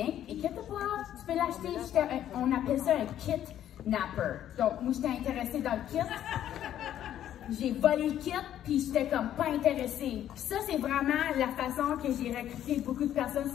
inquiète pas, tu peux l'acheter. On appelle ça un kidnapper. Donc, moi, j'étais intéressée dans le kit. J'ai volé le kit, puis j'étais comme pas intéressée. Puis ça, c'est vraiment la façon que j'ai recruté beaucoup de personnes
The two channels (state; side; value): quieter; right; 11.2 dB